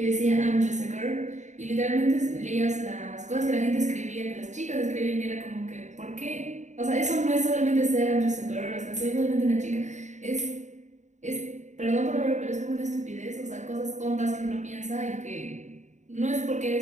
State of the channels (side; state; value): left; late; 0.34 ms